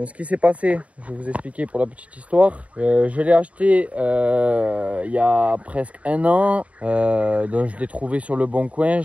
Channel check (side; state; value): left; late; 0.066 ms